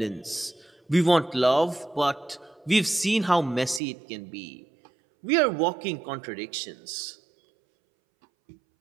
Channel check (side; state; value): left; drops out; at 3.8 s